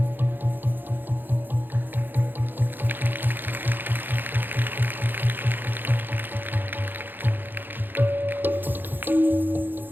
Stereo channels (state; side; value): late; left; 0.092 ms